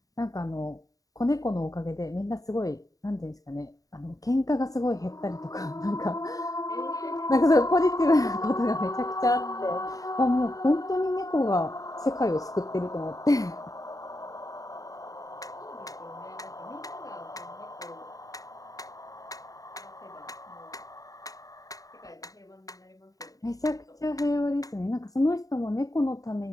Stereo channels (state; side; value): late; right; 0.17 ms